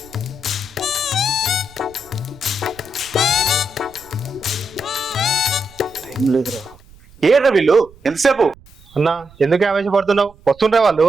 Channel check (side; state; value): right; noise; rumble, 25 dB below the sound